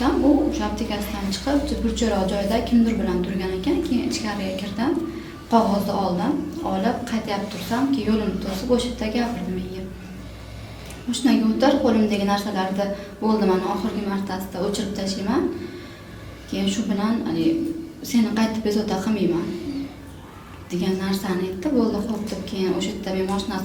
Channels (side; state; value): both; identical; correlation 1.00